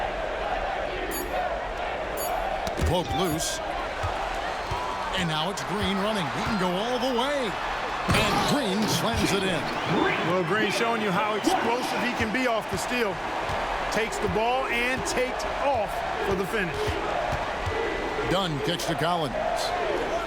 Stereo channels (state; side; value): identical; both; correlation 1.00